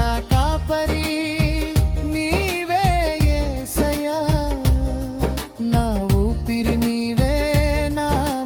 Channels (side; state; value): both; identical; correlation 1.00